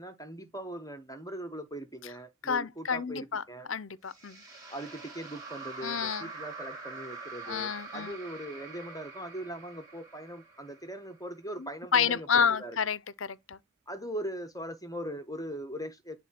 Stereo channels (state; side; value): quieter; right; 4.3 dB